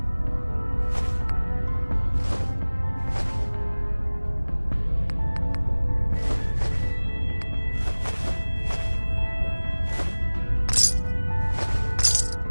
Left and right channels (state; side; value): inverted; both; correlation -1.00